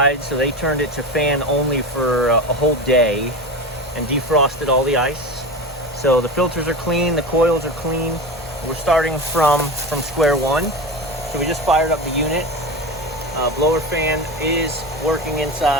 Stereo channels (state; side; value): normal; both; correlation 0.26